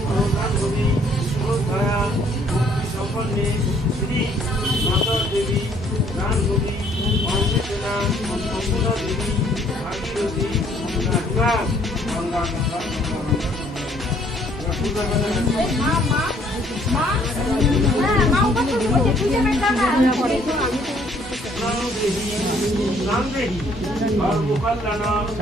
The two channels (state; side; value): normal; both; correlation 0.63